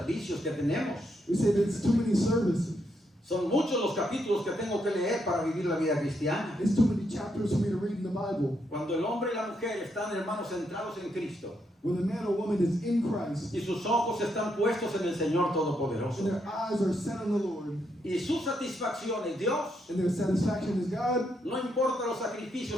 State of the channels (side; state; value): both; normal; correlation 0.78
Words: que tenemos. We say that it's too many services. Son muchos los capítulos que tengo que leer para vivir la vida cristiana. It's too many chapters for me to read in the Bible. Cuando el hombre y la mujer están, hermanos, centrados en Cristo When a man or woman is in Christ y sus ojos están puestos en el Señor Todopoderoso and their eyes are set on the Lord y su satisfacción es Dios, and their satisfaction is God, no importa los